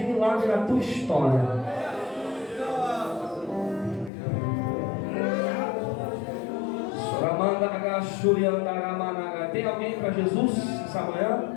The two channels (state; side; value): drops out; right; at 4.1 s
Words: milagre na tua história. Tem alguém para Jesus essa